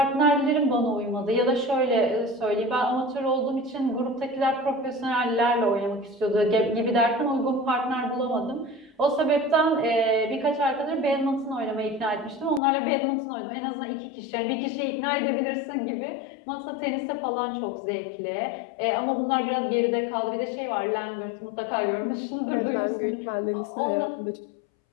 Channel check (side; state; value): right; drops out; at 12.6 s